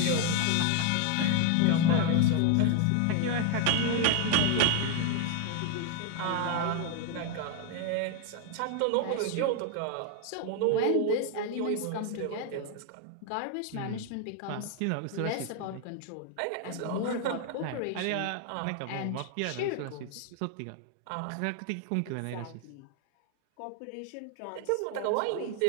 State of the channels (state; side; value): different; both; correlation 0.01